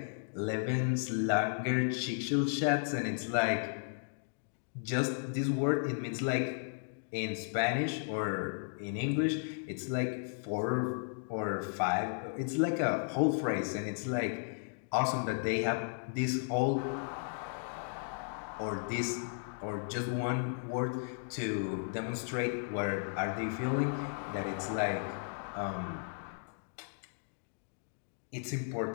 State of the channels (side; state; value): right; silent; digital silence